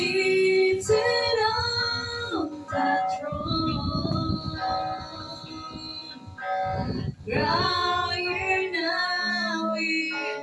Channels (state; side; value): identical; both; correlation 1.00